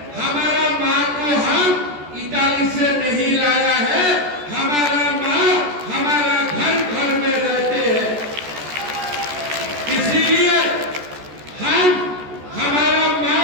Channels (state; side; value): late; left; 14 ms